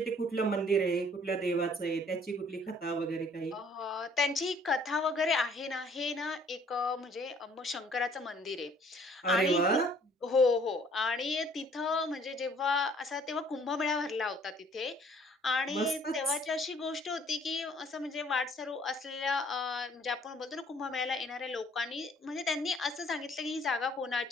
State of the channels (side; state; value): both; normal; correlation 0.59